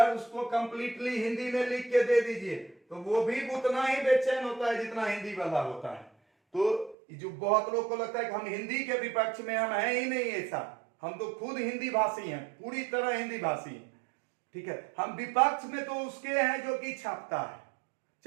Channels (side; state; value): left; drops out; at 7.0 s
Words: उसको कंप्लीटली हिंदी में लिख के दे दीजिए तो वो भी उतना ही बेचैन होता है जितना हिंदी वाला होता है। तो जो बहुत लोग को लगता है कि हम हिंदी के विपक्ष में, हम हैं ही नहीं ऐसा, हम तो खुद हिंदी भाषी हैं, पूरी तरह हिंदी भाषी हैं, ठीक है। हम विपक्ष में तो उसके हैं जो कि छापता है,